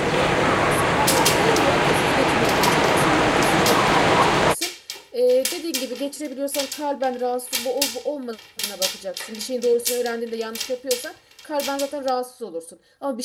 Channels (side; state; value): both; identical; correlation 1.00